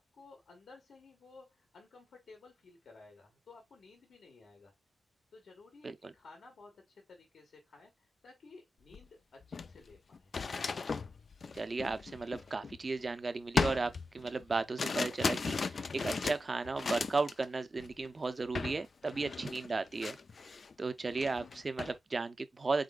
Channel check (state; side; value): normal; both; correlation 0.90